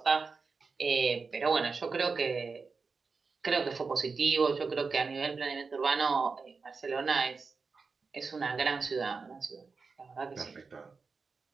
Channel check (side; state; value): left; quieter; 4.7 dB